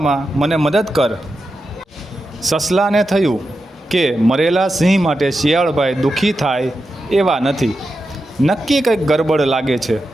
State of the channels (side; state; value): both; normal; correlation 0.89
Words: મને મદદ કર। સસલાને થયું કે મરેલા સિંહ માટે શિયાળભાઈ દુઃખી થાય એવા નથી, નક્કી કંઈક ગરબડ લાગે છે।